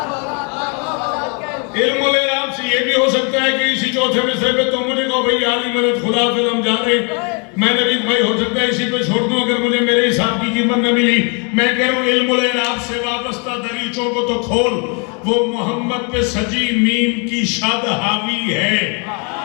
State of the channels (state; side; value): quieter; right; 35.6 dB